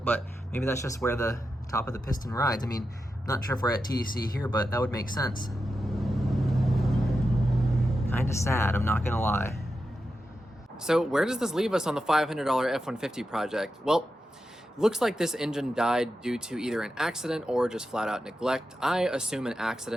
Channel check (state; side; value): normal; both; correlation 0.89